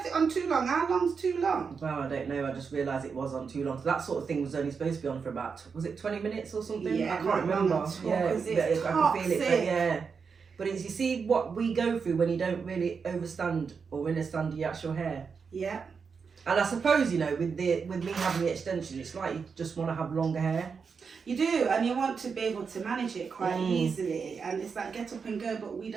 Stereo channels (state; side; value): quieter; left; 5.7 dB